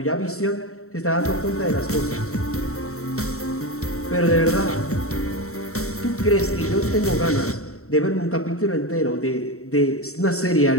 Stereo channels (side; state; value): right; late; 0.64 ms